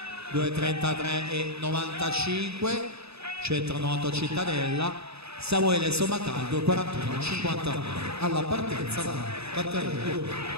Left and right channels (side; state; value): left; late; 0.79 ms